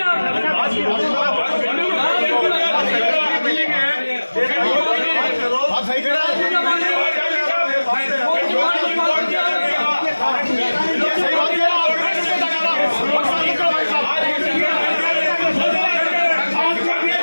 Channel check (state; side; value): inverted; both; correlation -1.00